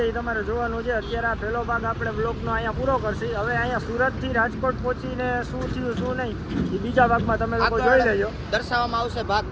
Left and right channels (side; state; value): both; identical; correlation 1.00